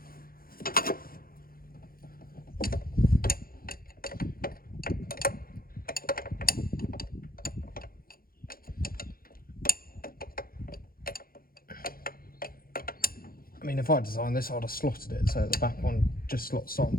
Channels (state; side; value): late; right; 0.42 ms